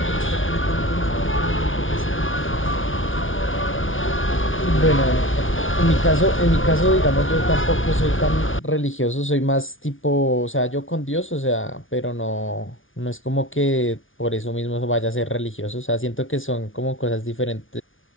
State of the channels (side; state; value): right; late; 0.57 ms